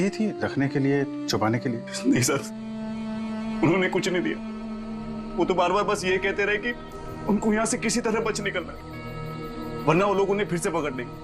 थी रखने के लिए, छुपाने के लिए? नहीं सर, उन्होंने कुछ नहीं दिया। वो तो बार बार बस ये कहते रहे कि उनको यहाँ से किसी तरह बच निकलना है, वरना वो लोग उन्हें फिर से पकड़ लेंगे।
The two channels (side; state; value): both; identical; correlation 1.00